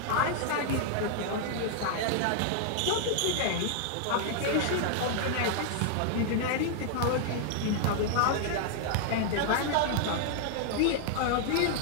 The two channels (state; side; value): different; both; correlation -0.01